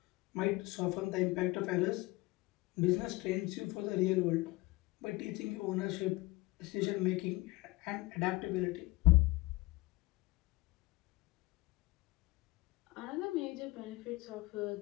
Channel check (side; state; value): right; quieter; 21.6 dB